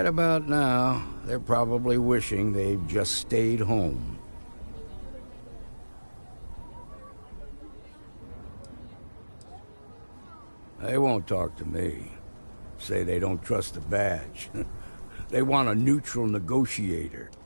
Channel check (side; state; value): both; inverted; correlation -1.00